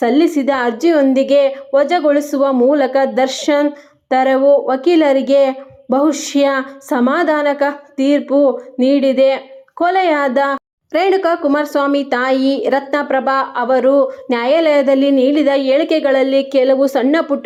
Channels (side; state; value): both; identical; correlation 1.00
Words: ಅರ್ಜಿಯೊಂದಿಗೆ ವಜಾಗೊಳಿಸುವ ಮೂಲಕ ದರ್ಶನ್ ತೆರವು ವಕೀಲರಿಗೆ ಬಹುಶಃ ಸಮಾಧಾನಕ ತೀರ್ಪು ನೀಡಿದೆ. ಕೊಲೆಯಾದ ರೇಣುಕಾ ಕುಮಾರಸ್ವಾಮಿ ತಾಯಿ ರತ್ನಪ್ರಭಾ ಅವರು ನ್ಯಾಯಾಲಯದಲ್ಲಿ ನೀಡಿದ ಹೇಳಿಕೆಗಳಲ್ಲಿ ಕೆಲವು ಸಣ್ಣ